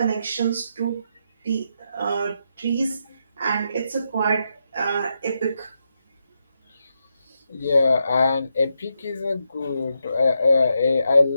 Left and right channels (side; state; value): both; inverted; correlation -0.83